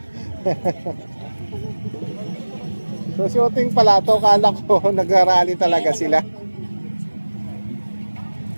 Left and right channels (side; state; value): both; inverted; correlation -1.00